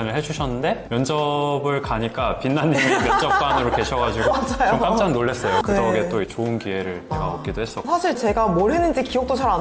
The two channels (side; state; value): both; identical; correlation 1.00